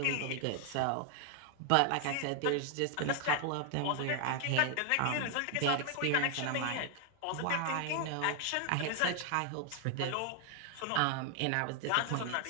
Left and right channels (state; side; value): different; both; correlation 0.00